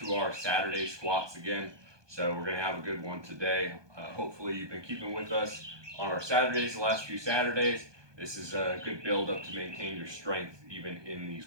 our Saturday squats again. So we're going to have a good one today. Hopefully you've been keeping with us on our Saturdays, the last few Saturdays. This is a good build up to maintain your strength even in these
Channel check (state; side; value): late; left; 1.2 ms